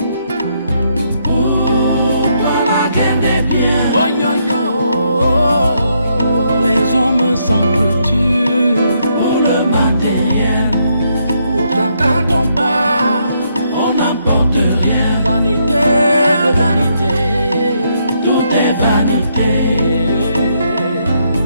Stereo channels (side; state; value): both; inverted; correlation -0.75